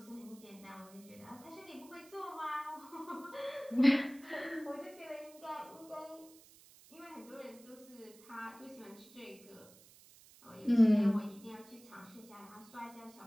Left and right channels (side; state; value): right; noise; hiss, 23 dB below the sound